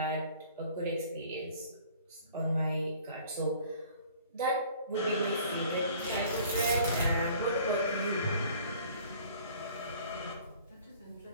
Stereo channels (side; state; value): both; inverted; correlation -0.52